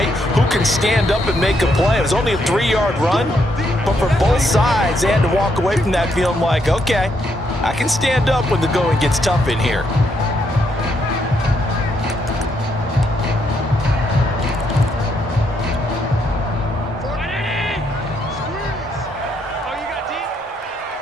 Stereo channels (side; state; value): both; normal; correlation 0.76